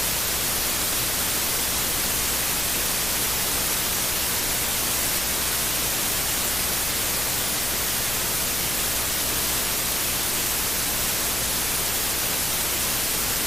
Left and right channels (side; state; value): left; noise; hum, 9 dB below the sound